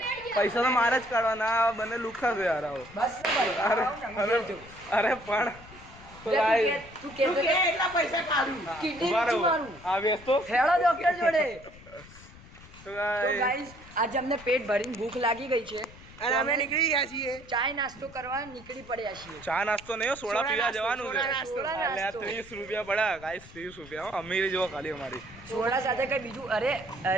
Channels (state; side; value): noise; left; rumble, 20 dB below the sound